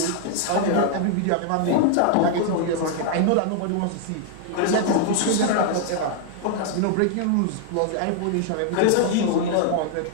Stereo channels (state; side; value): different; both; correlation 0.00